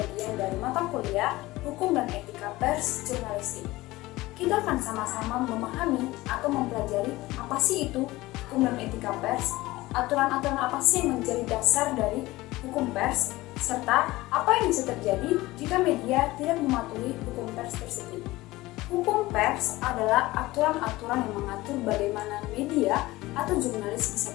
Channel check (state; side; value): quieter; right; 19.0 dB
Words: dari mata kuliah Hukum dan Etika Pers Jurnalistik. Kita akan sama-sama memahami atau mempelajari apa sih itu hukum dan etika pers, aturan-aturan apa sih yang menjadi dasar dari hukum pers, serta apa yang bisa terjadi jika media tidak mematuhi hukum pers tersebut. Hukum pers adalah aturan-aturan yang mengatur bagaimana media atau jurnalis bisa